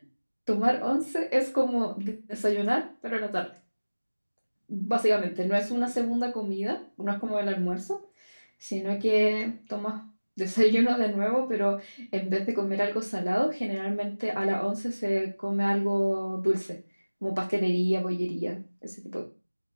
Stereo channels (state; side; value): inverted; both; correlation -1.00